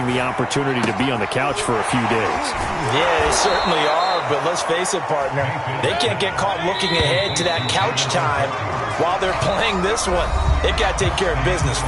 the opportunity to be on the couch for a few days. Yeah, they certainly are. But let's face it, partner, they can't get caught looking ahead to that couch time while they're playing this one. They've got to take care of business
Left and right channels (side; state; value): both; identical; correlation 1.00